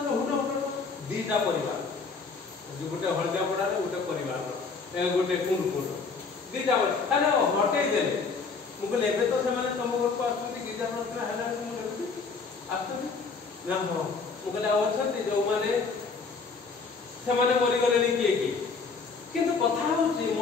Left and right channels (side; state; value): right; quieter; 4.7 dB